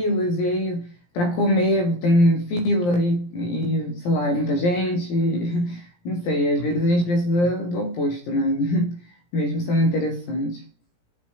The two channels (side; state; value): right; late; 17 ms